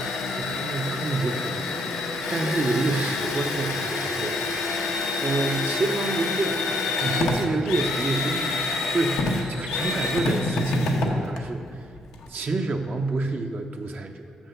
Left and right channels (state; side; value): normal; both; correlation 0.70